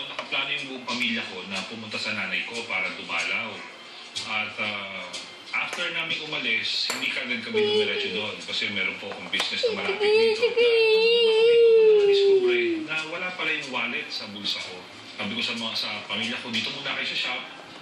nakaplano yung buong pamilya ko na pumunta sa nanay ko para dumalaw. At after namin umalis, hindi kagad kami dumiretso doon kasi meron po akong business na malapit dito. Na-discover na wala pala yung wallet sa bulsa ko. Sabi ko sa pamilya ko, dito muna kayo sa shop,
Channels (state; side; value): identical; both; correlation 1.00